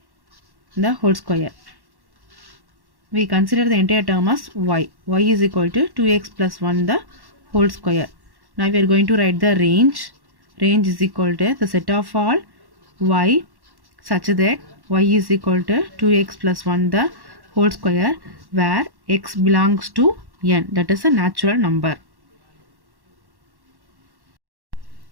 the whole square. We consider the entire term as y. Y is equal to 2x plus 1 the whole square. Now we are going to write the range. Range is equal to the set of all y such that y is equal to 2x plus 1 the whole square, where x belongs to n, that is a natural number.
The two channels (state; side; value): late; left; 1.1 ms